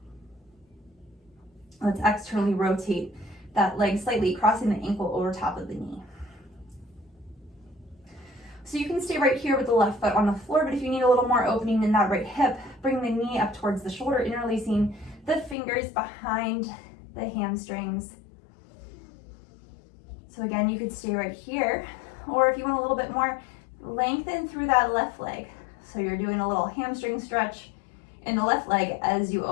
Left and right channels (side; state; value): right; drops out; at 15.6 s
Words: Let's externally rotate that leg slightly, crossing the ankle over top of the knee. So you can stay right here with the left foot on the floor, but if you need a little more opening in that right hip, bring the knee up towards the shoulder, interlacing the fingers behind the hamstrings. So again, you could stay right here, or if you want a little bit more, lengthen through that left leg. So you're doing a little hamstring stretch in the left leg as you